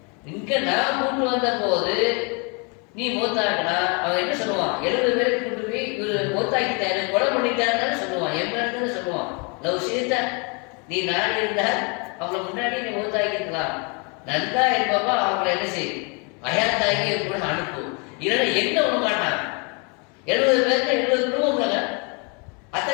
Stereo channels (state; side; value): quieter; right; 33.6 dB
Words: இங்க நான் கூப்பிட்டு வந்த போது நீ மூத்தாகனா அவன் என்ன சொல்லுவான்? 70 பேருக்கு கூட்டு போய் இவரு மூத்தாக்கிட்டாரு, கொலை பண்ணிட்டாருன்னு சொல்லுவான், எம்மான்னு சொல்லுவான். லவ் சீதா, நீ நாடு இருந்தா அவங்களை முன்னாடி நீ மூத்தாக்கி இருக்கலாம், நல்லா இருப்பாப்பா, அவங்களை என்ன செய்யும் அயாத்தாக்கி கூட அனுப்பு, இல்லைன்னா என்ன ஒண்ணு மாட்டான். 70 பேருக்கு 70 குடும்பம்லங்க,